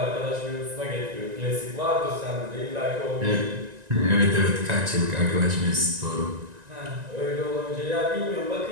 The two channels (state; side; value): late; left; 1.9 ms